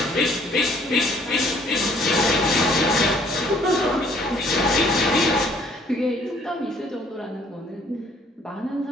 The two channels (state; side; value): normal; both; correlation 0.61